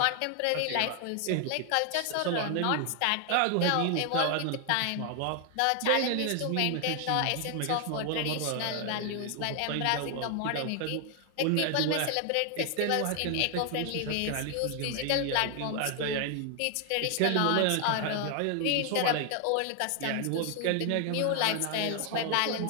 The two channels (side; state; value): both; different; correlation 0.00